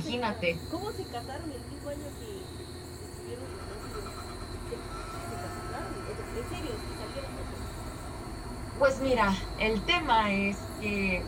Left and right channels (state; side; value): identical; both; correlation 1.00